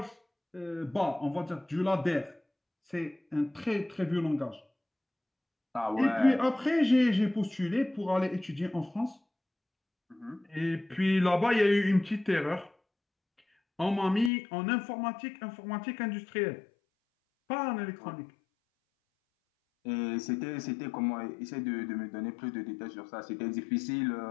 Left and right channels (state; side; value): drops out; right; at 14.3 s